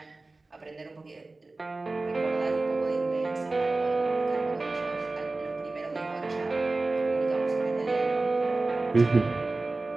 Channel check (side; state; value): left; quieter; 3.3 dB